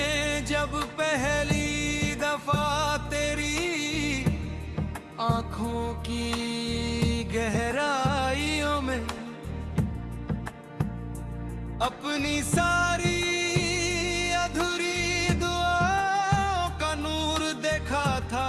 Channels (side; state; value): both; identical; correlation 1.00